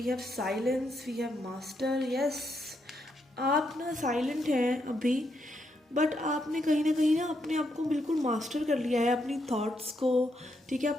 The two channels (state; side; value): normal; both; correlation 0.79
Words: have silence, we have master. Yes, आप ना साइलेंट हैं अभी, बट आपने कहीं ना अपने आप को बिल्कुल मास्टर कर लिया है, अपनी थॉट्स को, ठीक है,